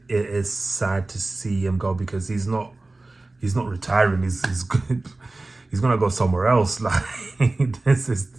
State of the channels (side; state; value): left; quieter; 3.1 dB